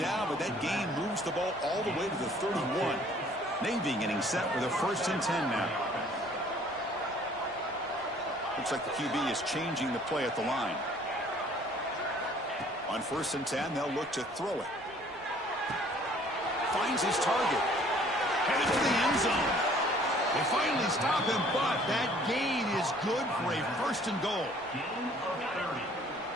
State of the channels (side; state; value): right; noise; rumble, 26 dB below the sound